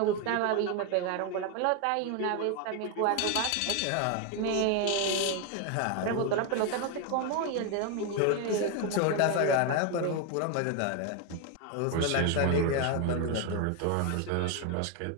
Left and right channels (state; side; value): different; both; correlation 0.01